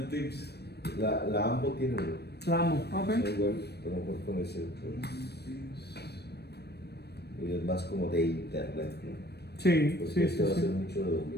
el Tips. La AMBO tiene uno. La amo, ok. Es un web, pero no puedo con ese. Pues, y es más como de internet, ¿no? Sí, Porque sí, este va a sí. ser mucho de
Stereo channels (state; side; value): late; right; 0.47 ms